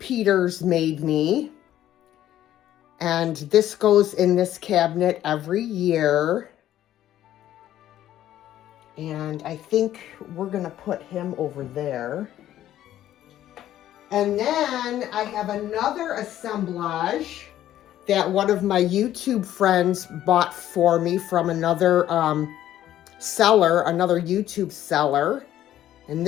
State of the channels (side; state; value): right; quieter; 12.5 dB